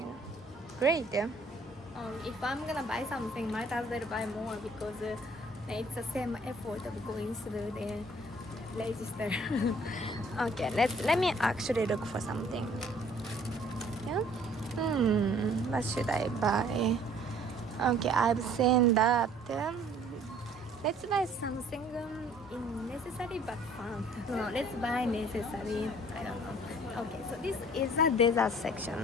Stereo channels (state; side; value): normal; both; correlation 0.56